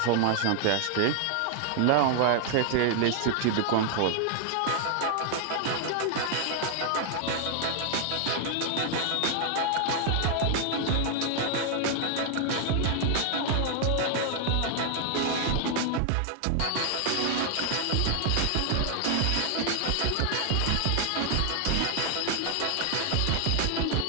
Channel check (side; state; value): both; different; correlation 0.00